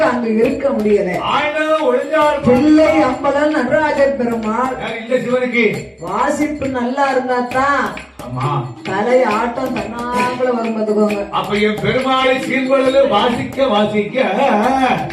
அங்கு இருக்க முடியல ஆயிரம் ஒளிஞ்சார் பிள்ளை அம்பலன் நடராஜ பெருமாள் யார் இல்ல சிவனுக்கு வாசிப்பு நல்லா இருந்தா தான் ஆமா தலை ஆட்டம் தன்னாங்கள வரும் பார்த்துக்கோங்க. அப்ப என் பெருமாளை சீர்கொள்ளல வாசிக்க வாசிக்க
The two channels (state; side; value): identical; both; correlation 1.00